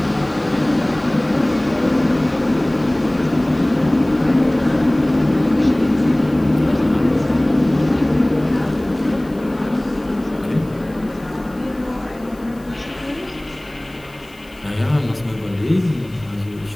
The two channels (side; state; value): left; noise; hiss, 28 dB below the sound